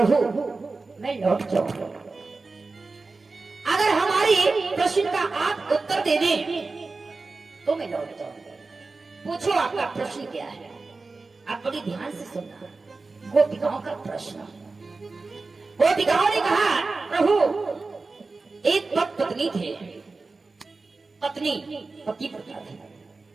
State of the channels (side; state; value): left; quieter; 3.8 dB